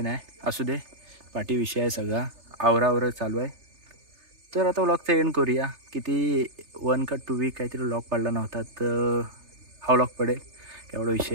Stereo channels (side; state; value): left; late; 3.3 ms